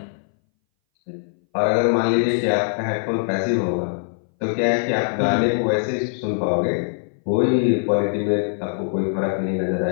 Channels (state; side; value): silent; right; 61 dB below the other